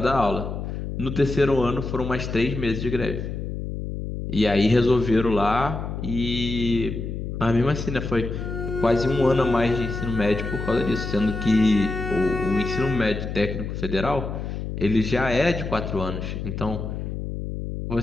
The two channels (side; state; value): left; noise; hum, 5 dB below the sound